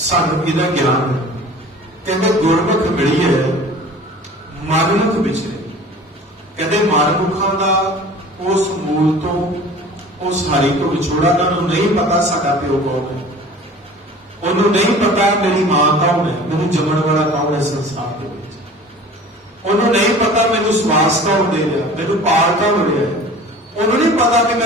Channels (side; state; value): both; normal; correlation 0.43